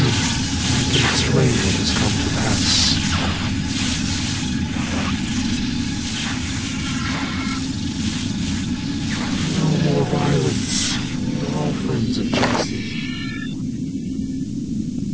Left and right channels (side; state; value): both; identical; correlation 1.00